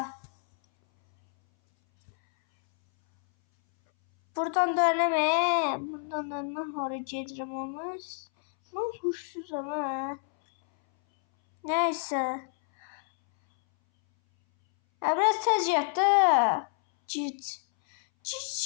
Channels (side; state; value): right; silent; 59 dB below the other